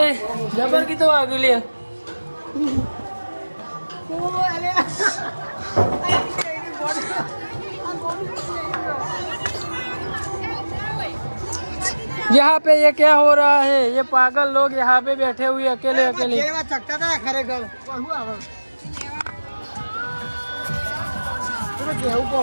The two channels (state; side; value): inverted; both; correlation -1.00